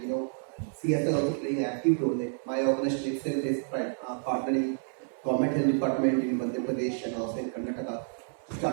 CSR also playing an active role. Like my organization itself is partnering government health department in Madhya Pradesh and also in Karnataka to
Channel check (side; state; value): left; silent; 58 dB below the other